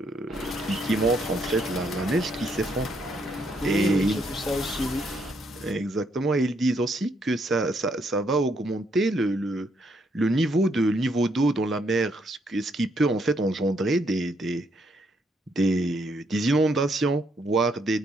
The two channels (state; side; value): normal; both; correlation 0.73